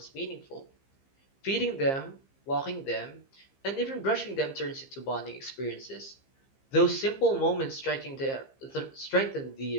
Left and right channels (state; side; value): late; right; 15 ms